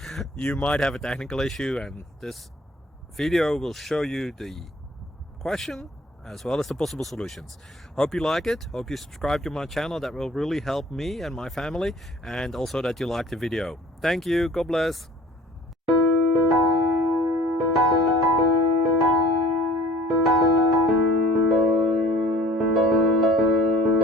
you might have a technical issue and this video will show you the question as well as the possible solutions. Hope you like it, hope you subscribe to my channel. That will really help me and my family, and also that you like the video. Thank you, God bless.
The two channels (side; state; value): both; normal; correlation 0.49